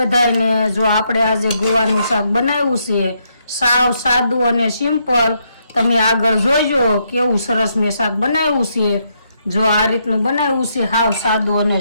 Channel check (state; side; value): inverted; both; correlation -0.77